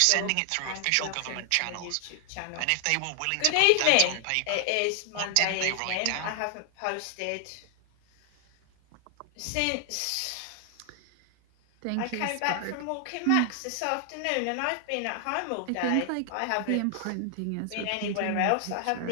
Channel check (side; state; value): both; different; correlation 0.00